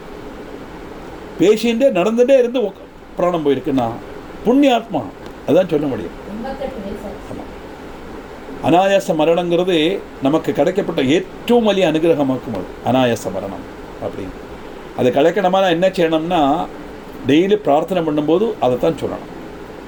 பேசிகிட்டே நடந்துகிட்டே இருந்து பிராணம் போயிருக்குன்னா புண்ணியாத்மா அதுதான் சொல்ல முடியும். ஆமாம், அனாயாச மரணங்கிறது நமக்கு கிடைக்கப்பட்ட ஏற்றவும் வலிய அனுகிரகமாக்கும். அது அனாயாச மரணம் அப்படின்னு அதை கிடைக்கணுமா என்ன செய்யணும்னா டெய்லி பிரார்த்தனை பண்ணும்போது அதை தான் சொல்லணும்.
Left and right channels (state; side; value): identical; both; correlation 1.00